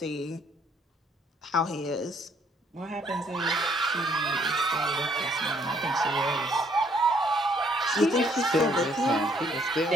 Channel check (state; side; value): normal; both; correlation 0.66